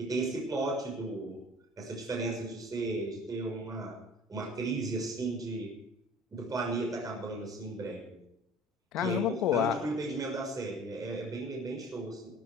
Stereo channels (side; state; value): both; normal; correlation 0.46